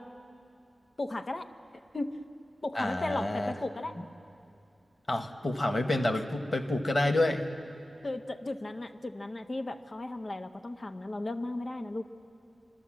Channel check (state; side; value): normal; both; correlation 0.95